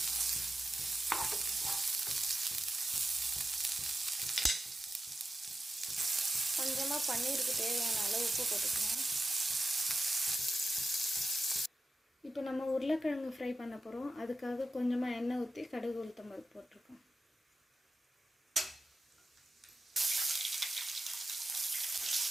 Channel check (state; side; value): normal; both; correlation 0.92